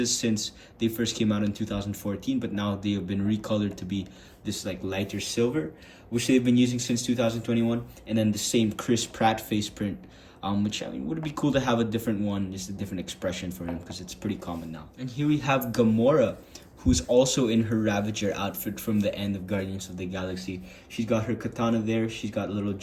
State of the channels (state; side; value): identical; both; correlation 1.00